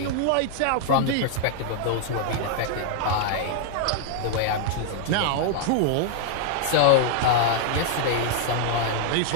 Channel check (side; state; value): both; different; correlation -0.01